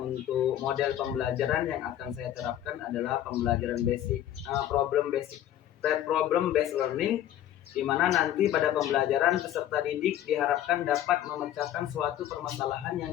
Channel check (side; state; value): right; quieter; 11.9 dB